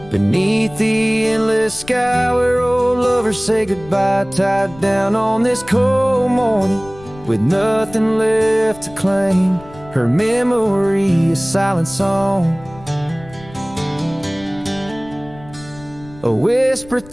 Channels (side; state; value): left; noise; rumble, 20 dB below the sound